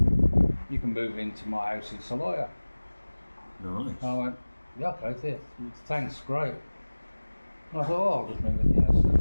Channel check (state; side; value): inverted; both; correlation -1.00